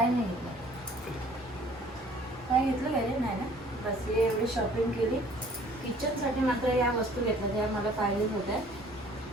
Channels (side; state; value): both; normal; correlation 0.55